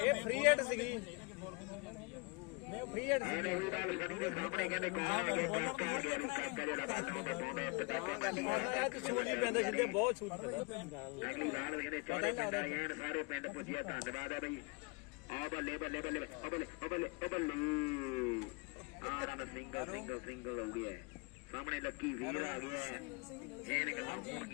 ਫ੍ਰੀ ਹਿੱਟ ਸੀਗੀ ਨਹੀਂ ਫ੍ਰੀ ਹਿੱਟ ਸੀ ਬੋਲਰ ਥੋੜੀ ਦੇਖਣਾ ਇਹਨੇ ਆਹ ਤੇ ਸੂਲੀ ਪੈਂਦੇ ਸਿੱਧੇ ਬਹੁਤ ਛੂਟ ਸਾਰੇ ਪਿੰਡ ਪੁੱਜਿਆ ਧੰਨਵਾਦ ਹੈ ਬਈ ਆ ਬੱਲੇ ਬੱਲੇ ਬੱਲੇ ਬੱਲੇ ਬੱਲੇ ਬੱਲੇ ਆ ਰਨ ਸਿੰਗਲ ਹੋ ਗਿਆ ਸਾਹਮਣੇ ਲੱਕੀ ਵੀਰ ਆ ਗਿਆ ਜੈਨ ਗੱਲਾਂ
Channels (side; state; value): right; quieter; 29.3 dB